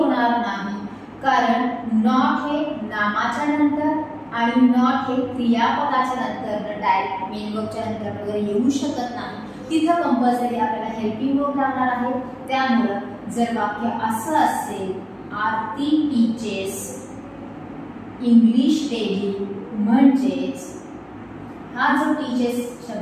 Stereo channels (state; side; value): identical; both; correlation 1.00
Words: नाही कारण नॉट हे नामाच्या नंतर आणि नॉट हे क्रियापदाच्या नंतर डायरेक्ट मेन वर्बच्या नंतर वगैरे येऊ शकत नाही. तिथं कंपल्सरी आपल्याला हेल्पिंग वर्ब लागणार आहे. त्यामुळं जर वाक्य असं असेल आरती टीचेस इंग्लिश डेली म्हणजेच हा जो टीचेस